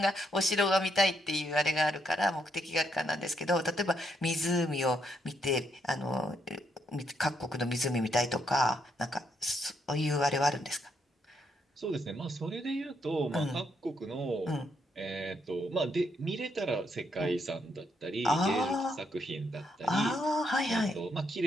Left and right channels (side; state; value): both; normal; correlation 0.76